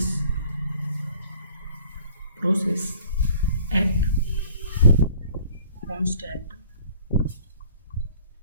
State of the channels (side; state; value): both; inverted; correlation -0.53